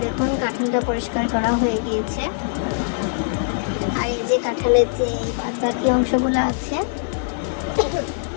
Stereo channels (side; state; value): right; silent; digital silence